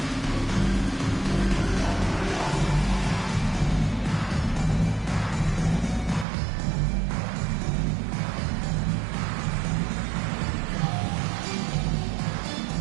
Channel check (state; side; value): drops out; left; at 6.2 s